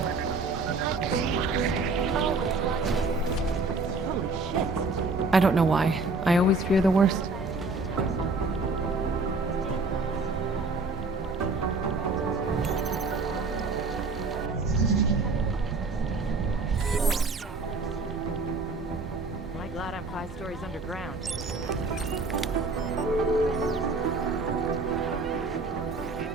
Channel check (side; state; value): left; quieter; 3.7 dB